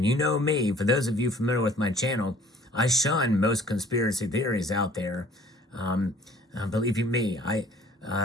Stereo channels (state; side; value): normal; both; correlation 0.53